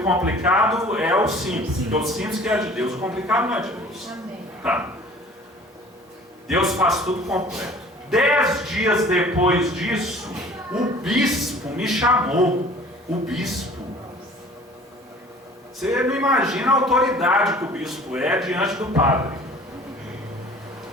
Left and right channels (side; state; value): both; normal; correlation 0.48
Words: complicado, é o simples. Porque o simples que é de Deus. O complicado não é de Deus. Tá. Deus faz tudo completo. 10 dias depois disso, o bispo me chamou. O bispo. Você não imagina a autoridade que o bispo é diante do padre.